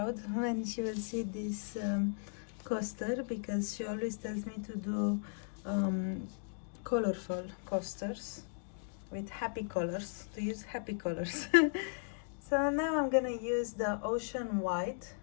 when she will see this coaster, because she always tells me to do colorful coasters with happy colors, to use happy colors. So now I'm gonna use the Ocean White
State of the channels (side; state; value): right; silent; digital silence